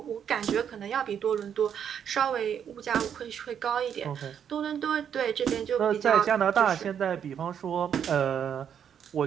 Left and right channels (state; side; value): quieter; left; 8.4 dB